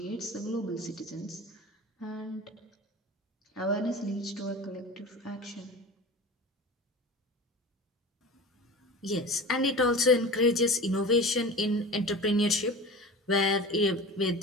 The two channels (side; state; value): both; normal; correlation 0.34